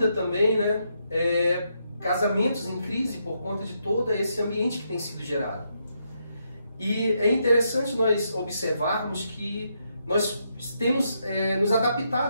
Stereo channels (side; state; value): both; inverted; correlation -0.79